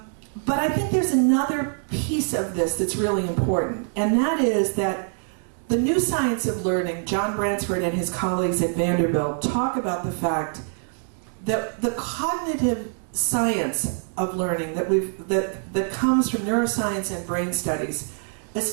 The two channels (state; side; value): silent; left; 61 dB below the other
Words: I think there's another piece of this that's really important, and that is that the new science of learning, John Bransford and his colleagues at Vanderbilt talk about the fact that the cognitive science of learning that comes from neuroscience and brain studies